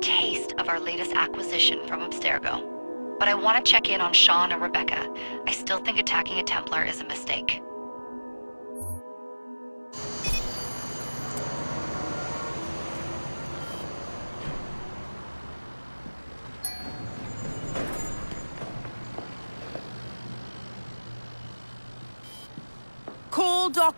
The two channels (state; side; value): inverted; both; correlation -1.00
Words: of our latest acquisition from Abstergo. But I want to check in on Sean and Rebecca. I still think attacking a Templar is a mistake. Call